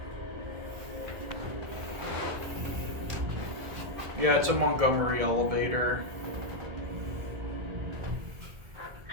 Yeah, it's a Montgomery elevator.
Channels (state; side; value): late; left; 1.6 ms